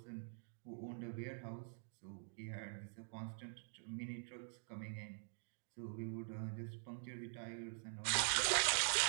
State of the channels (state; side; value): silent; left; digital silence